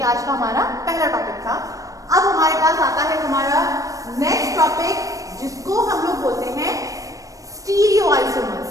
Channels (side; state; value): left; late; 0.16 ms